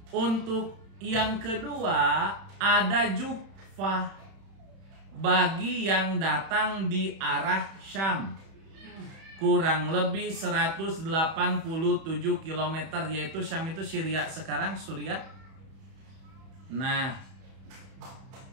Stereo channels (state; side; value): late; left; 31 ms